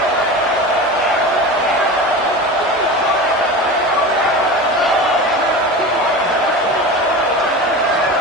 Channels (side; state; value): both; normal; correlation 0.30